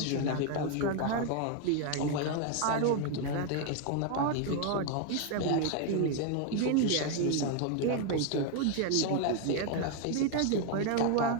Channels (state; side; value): different; both; correlation 0.01